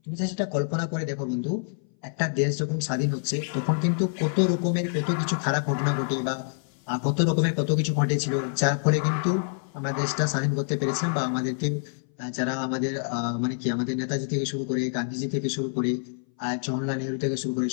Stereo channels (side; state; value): right; silent; 59 dB below the other